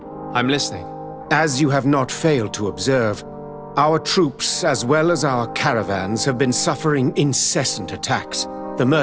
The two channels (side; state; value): both; identical; correlation 1.00